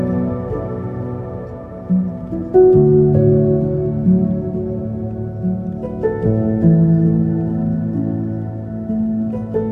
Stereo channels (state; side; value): identical; both; correlation 1.00